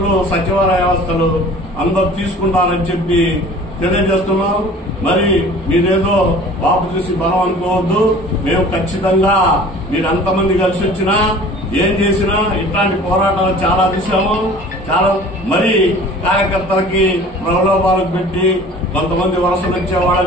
సచివాలయ వ్యవస్థలు అందరూ తీసుకుంటారని చెప్పి తెలియజేస్తున్నాం. మరి మీరేదో బాబు చూసి బలం అనుకోవద్దు. మేము ఖచ్చితంగా మీరు ఎంతమంది కలిసి వచ్చినా ఏం చేసినా ఇట్లాంటి పోరాటాలు చాలా చూసాము. చాలా మరి కార్యకర్తలకి ప్రలోభాలకు పెట్టి కొంతమంది వలసలు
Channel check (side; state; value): both; normal; correlation 0.45